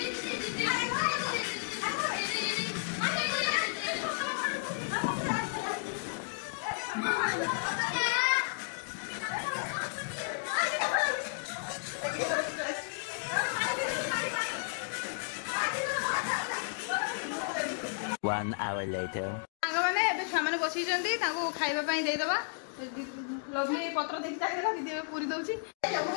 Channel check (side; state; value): right; silent; digital silence